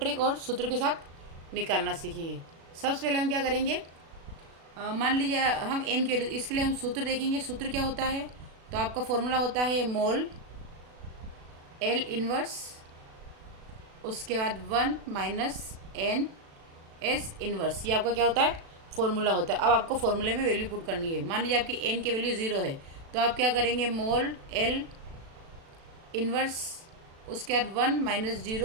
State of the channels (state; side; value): late; left; 36 ms